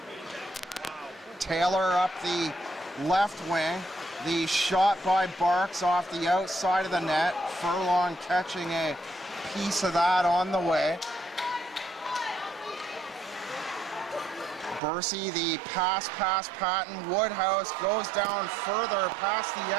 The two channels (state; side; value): drops out; left; at 14.8 s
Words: Taylor up the left wing. The shot by Barks off the outside of the net. Furlong catching a piece of that on the way. Bursey, the pass Patton. Woodhouse goes down further past the